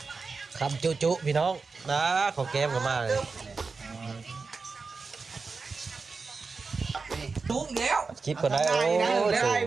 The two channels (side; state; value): left; quieter; 4.5 dB